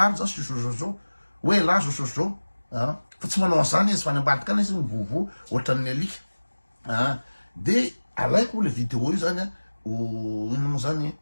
zao sosozao hoe la sosozao fa tsy manao an'izany izy fa ny ambadika any izy mivovo ohatran'ny alika de alaiko le vidéo io zany ino moa zany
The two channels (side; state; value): both; inverted; correlation -1.00